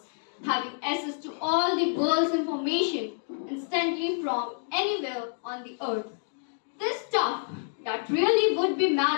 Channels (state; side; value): silent; right; 59 dB below the other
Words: having access to all the world's information instantly from anywhere on the earth. This stuff that really would be